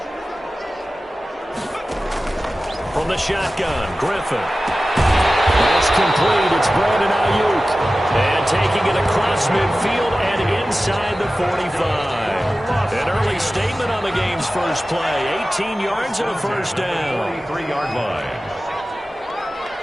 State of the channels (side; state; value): both; normal; correlation 0.95